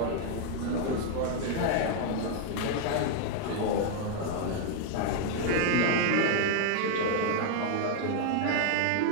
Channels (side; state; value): both; different; correlation 0.00